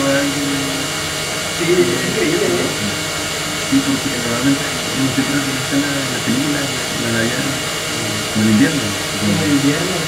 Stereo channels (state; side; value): identical; both; correlation 1.00